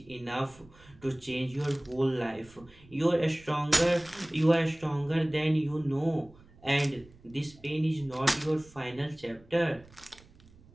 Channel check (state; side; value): noise; right; rumble, 25 dB below the sound